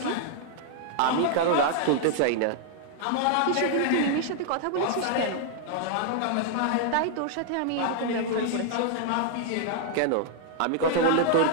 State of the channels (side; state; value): both; different; correlation 0.00